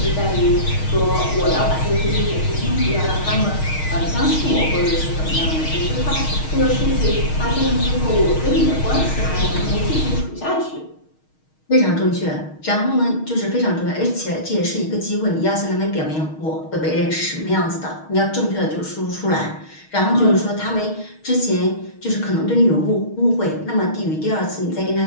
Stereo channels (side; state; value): right; late; 6.4 ms